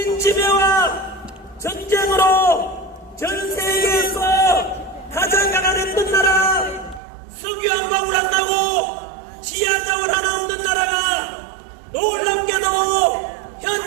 전쟁으로 전 세계에서 가장 가난했던 나라 석유암광을 한다고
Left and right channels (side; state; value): left; drops out; at 7.0 s